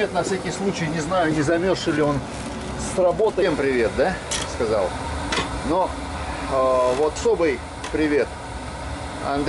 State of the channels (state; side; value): identical; both; correlation 1.00